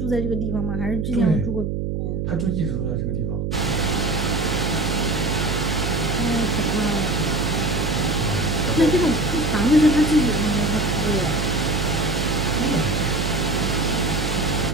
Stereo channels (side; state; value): right; noise; hum, 2 dB below the sound